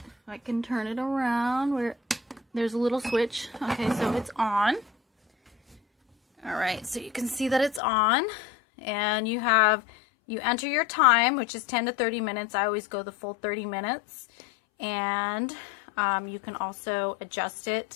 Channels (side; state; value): right; drops out; at 7.8 s